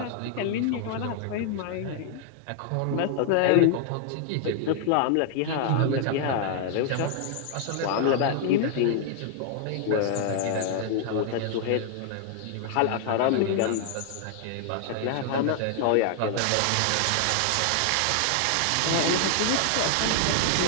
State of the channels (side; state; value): both; different; correlation 0.00